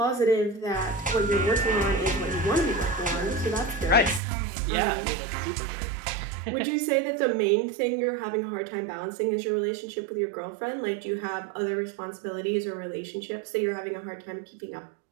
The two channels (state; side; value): drops out; left; at 4.2 s